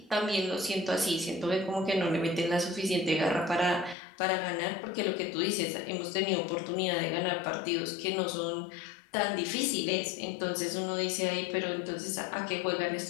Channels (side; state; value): right; drops out; at 4.0 s